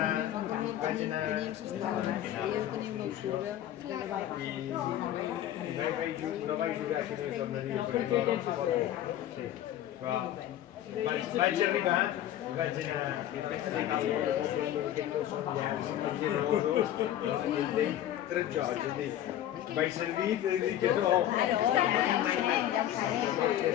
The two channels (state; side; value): quieter; right; 12.1 dB